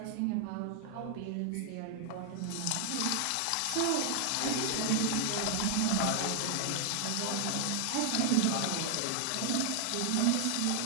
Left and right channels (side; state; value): both; different; correlation 0.00